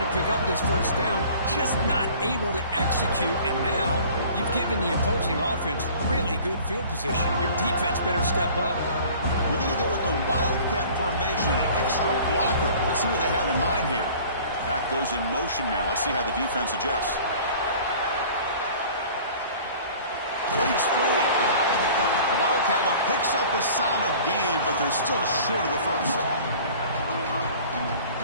to pick up this first down, just not able to execute, and now you've given the opposing offense really good field position. Your defense better step up. We're going to go with the Wildcat formation, an extra blocker. Let's see what they have in mind here. Back goes in motion now. Let's see how the defense adjusts. Breaks free. The Wildcat look picks up a solid gain, but they're still short of the first.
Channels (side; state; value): both; inverted; correlation -0.47